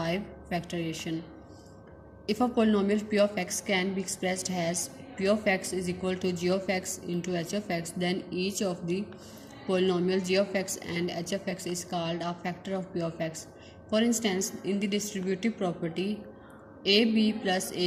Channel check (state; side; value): identical; both; correlation 1.00